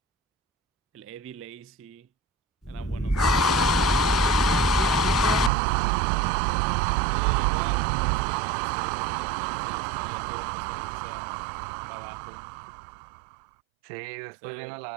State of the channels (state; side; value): drops out; left; at 5.5 s